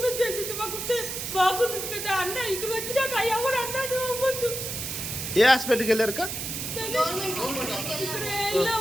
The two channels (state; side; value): noise; right; hiss, 5 dB below the sound